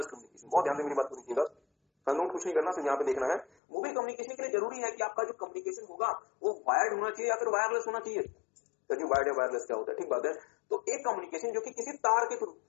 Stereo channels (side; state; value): right; drops out; at 3.5 s